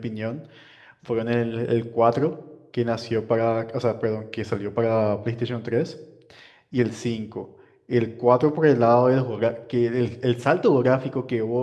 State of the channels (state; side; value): identical; both; correlation 1.00